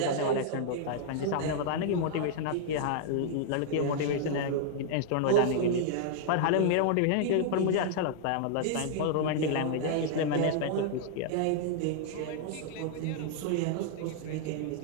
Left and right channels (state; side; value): different; both; correlation -0.01